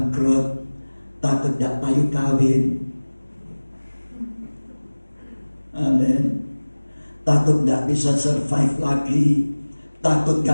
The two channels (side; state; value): both; inverted; correlation -1.00